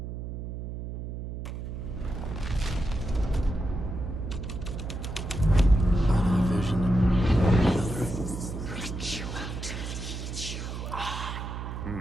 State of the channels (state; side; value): noise; right; hum, 6 dB below the sound